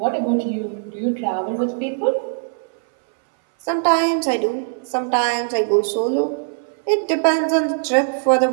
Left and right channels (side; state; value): left; silent; 61 dB below the other